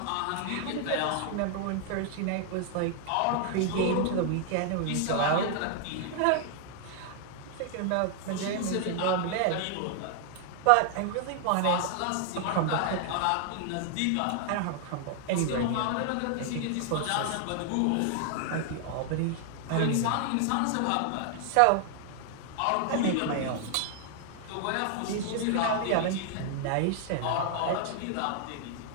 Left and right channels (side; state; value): both; different; correlation 0.00